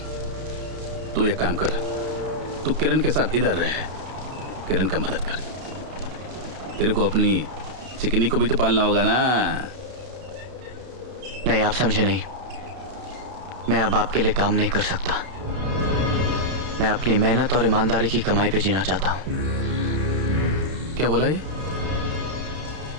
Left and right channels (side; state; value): left; late; 32 ms